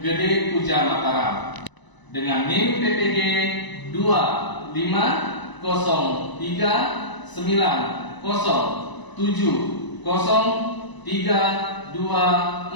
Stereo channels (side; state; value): right; late; 1.0 ms